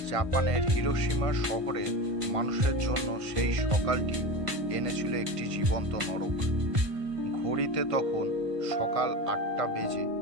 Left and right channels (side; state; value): left; late; 1.5 ms